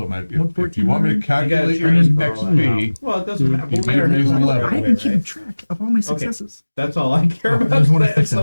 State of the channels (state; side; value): inverted; both; correlation -1.00